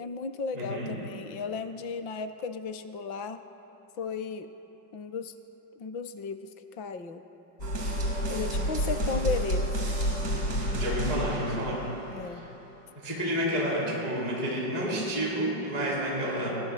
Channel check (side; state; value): right; late; 5.4 ms